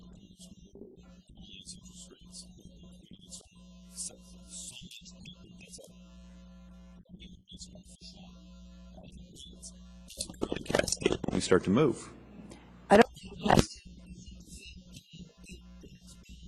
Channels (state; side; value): identical; both; correlation 1.00